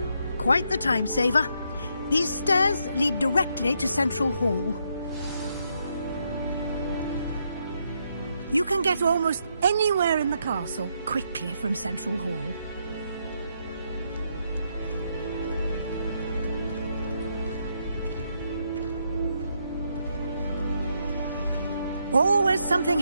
Quite the time saver. These stairs lead directly to Central Hall. You can get almost anywhere in the castle quickly from Central Hall. Always something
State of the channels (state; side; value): inverted; both; correlation -0.77